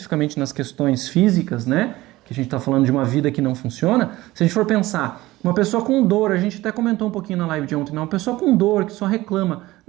nas questões físicas, né? Que a gente está falando de uma vida que não funciona. Se a gente for pensar, uma pessoa com dor, a gente até comentou um pouquinho na live de ontem, né? Uma pessoa com dor, que só reclama,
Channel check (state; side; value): quieter; left; 18.0 dB